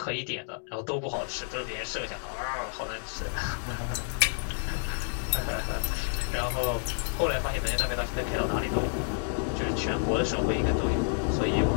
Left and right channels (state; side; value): silent; right; digital silence